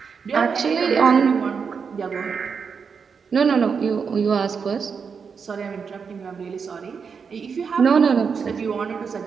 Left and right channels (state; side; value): quieter; left; 5.9 dB